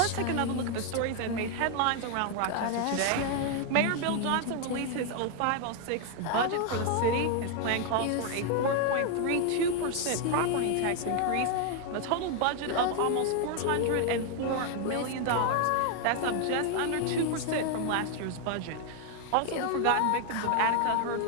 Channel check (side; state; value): both; different; correlation 0.00